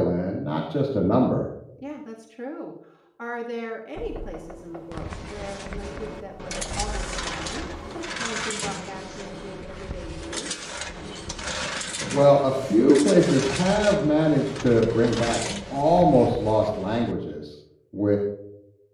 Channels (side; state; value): both; identical; correlation 1.00